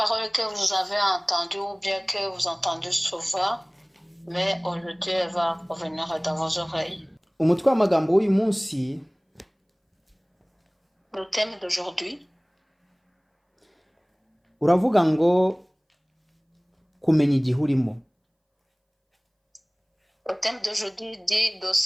que vous avez entendue ou bien que vous entendez souvent, mais aujourd'hui elle va revenir dans vos oreilles. Umutwe w'amagambo w'uyu munsi Le thème d'aujourd'hui uravuga ngo kumenya igihe urimo. Le thème d'aujourd'hui dit de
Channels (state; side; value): identical; both; correlation 1.00